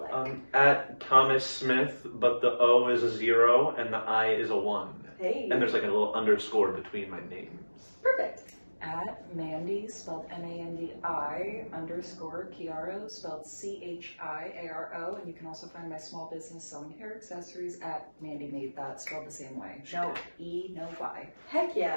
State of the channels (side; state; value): both; inverted; correlation -1.00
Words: at Thomas Smith, but the O is a 0 and the I is a 1. Hey. And there's a little underscore between my names. Perfect. At Mandi, spelled Mandi _ Chiaro, spelled Chiaro, and you can also find my small business selling hair accessories at Mandi Made That, spelled the same way. No E, no Y. Heck